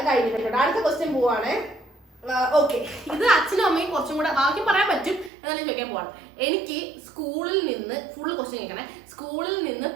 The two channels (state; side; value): drops out; left; at 5.3 s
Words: കഴിഞ്ഞിട്ടുണ്ട്. അടുത്ത ക്വസ്റ്റ്യൻ പോവാണ്. ഓക്കെ, ഇത് അച്ഛനും അമ്മയും കുറച്ചും കൂടെ ബാക്കി പറയാൻ പറ്റും എന്നാലും ചോദിക്കാൻ പോവാണ്. എനിക്ക് സ്കൂളിൽ നിന്ന് ഫുള്ള് ക്വസ്റ്റ്യൻ കേൾക്കണേ. സ്കൂളിൽ നിന്ന്